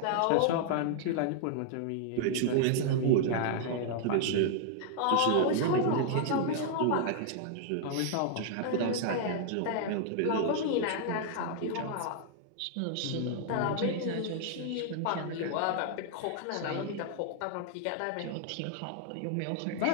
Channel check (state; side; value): different; both; correlation -0.01